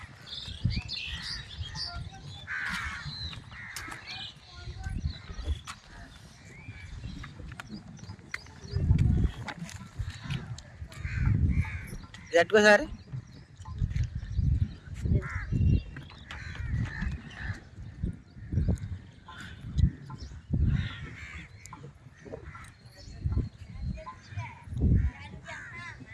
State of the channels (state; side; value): identical; both; correlation 1.00